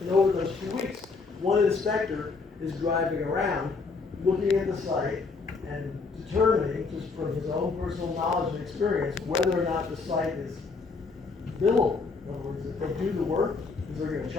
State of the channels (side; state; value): right; quieter; 4.3 dB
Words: And over those few weeks, one inspector is driving around, looking at the site and determining, just from his own personal knowledge and experience, whether or not the site is billable. In other words, if they do the work, because they're gonna